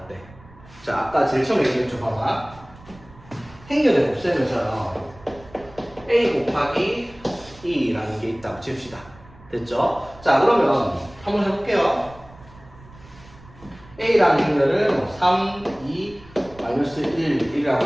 때. 자, 아까 제일 처음에 얘기했죠, 봐봐. 행렬의 곱셈에서요, a 곱하기 2라는 게 있다고 칩시다. 됐죠? 자, 그러면 한번 해볼게요. a라는 행렬을 3, 2, 마이너스 1, 1이라고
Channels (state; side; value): noise; right; rumble, 22 dB below the sound